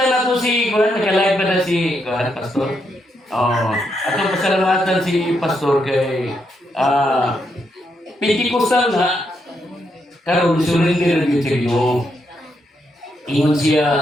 na to si Kuhan, naka-live pa na si Kuhan, Pastor. Atong pasalamatan si Pastor kay Pentikostal na karon surrender gyud sa Ginoo. Ingon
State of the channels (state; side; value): normal; both; correlation 0.79